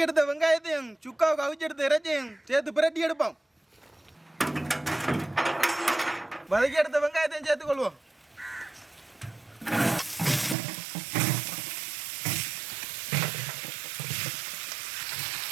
எடுத்த வெங்காயத்தையும் சுக்காவுக்கு அவிச்சு எடுத்த இறைச்சியும் சேர்த்து பிரட்டி எடுப்போம். வதக்கி எடுத்த வெங்காயத்தையும் சேர்த்து கொள்வோம்.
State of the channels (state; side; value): drops out; left; at 10.6 s